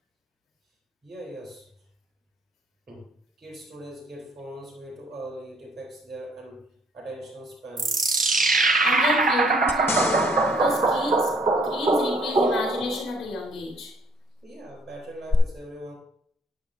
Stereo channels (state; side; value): normal; both; correlation 0.63